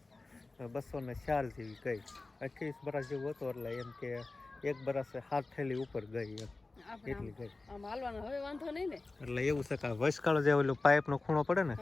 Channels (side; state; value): right; quieter; 3.4 dB